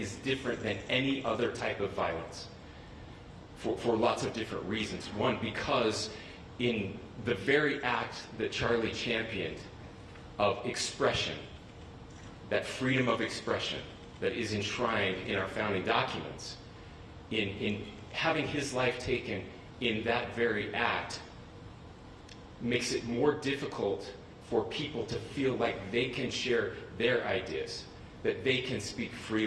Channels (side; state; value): both; identical; correlation 1.00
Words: different than any other type of violence for lots of different reasons. One, because in the very act that Charlie championed of expression, that freedom of expression that is enshrined in our founding documents, in having his life taken in that very act, makes it more difficult for people to feel like they can share their ideas, that they can speak